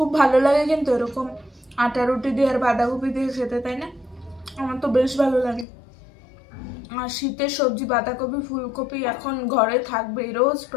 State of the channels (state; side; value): drops out; right; at 5.7 s